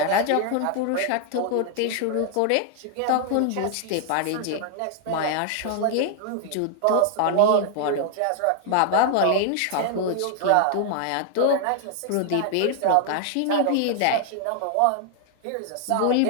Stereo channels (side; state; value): both; different; correlation 0.00